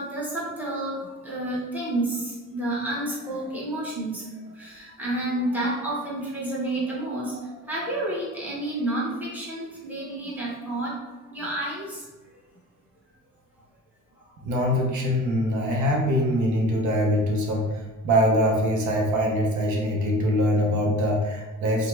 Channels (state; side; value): normal; both; correlation 0.38